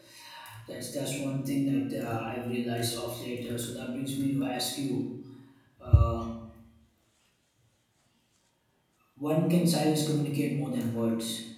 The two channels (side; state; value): both; identical; correlation 1.00